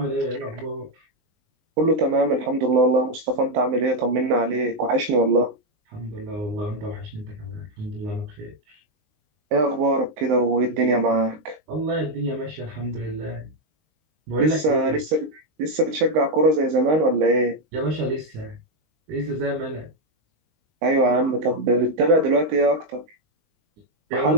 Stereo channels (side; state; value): left; late; 19 ms